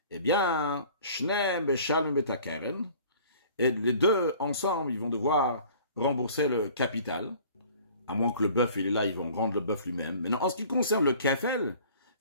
Eh bien, Shneem Beshalm Betakeren, et les 2 ensemble, ils vont devoir rembourser le capital, à moins que le bœuf, il est là, ils vont rendre le bœuf lui-même. Mais non, en ce qui concerne le kefel,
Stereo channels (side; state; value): both; inverted; correlation -0.50